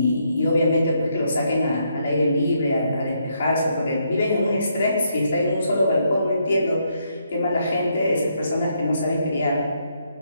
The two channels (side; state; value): both; inverted; correlation -0.76